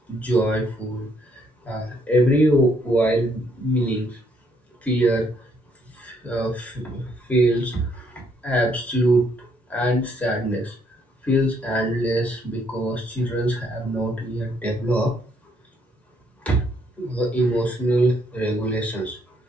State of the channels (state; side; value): normal; both; correlation 0.70